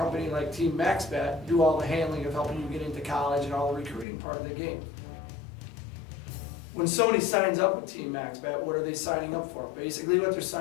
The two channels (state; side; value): drops out; right; at 4.0 s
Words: like Team Maxbat do all the handling of helping you get into college and all the recruiting part of the game. When somebody signs up with Team Maxbat, what are they signing up for? Basically what they're